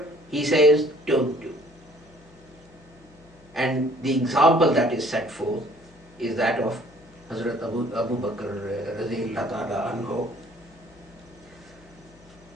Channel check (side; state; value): left; noise; hum, 26 dB below the sound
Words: he says don't do. And the example that is set forth is that of Hazrat Abu Bakr radhiyallahu ta'ala anhu.